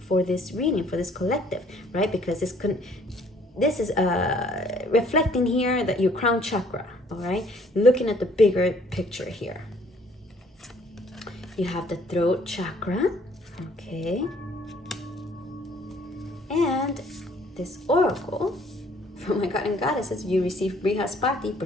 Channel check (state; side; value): normal; both; correlation 0.60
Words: this reading, for this collective, right? Because this is reflecting here that your crown chakra, all right? Looking at the bigger picture here. You have the throat chakra, okay? And this oracle from my god and goddesses, you receive Brihaspati,